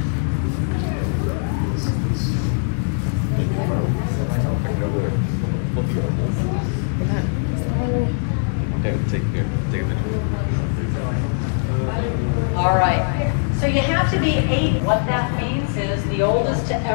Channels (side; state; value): right; silent; 64 dB below the other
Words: All right. So you have to be 8. What that means is the oldest to